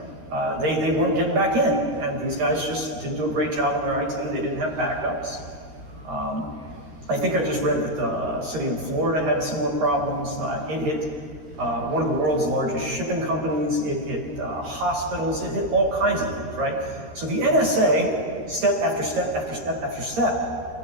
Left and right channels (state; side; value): late; left; 13 ms